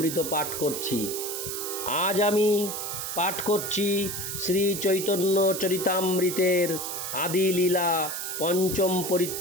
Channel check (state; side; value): noise; right; hiss, 5 dB below the sound